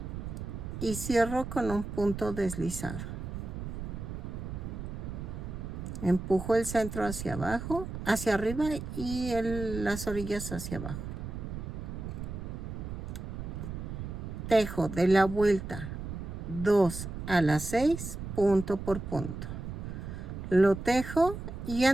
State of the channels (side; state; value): right; noise; rumble, 7 dB below the sound